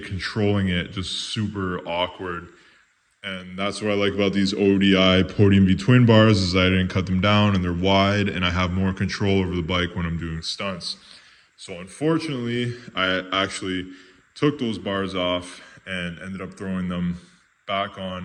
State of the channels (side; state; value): both; identical; correlation 1.00